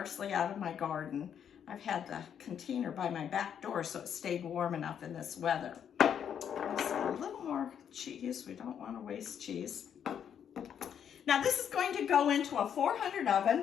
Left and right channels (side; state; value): right; quieter; 8.5 dB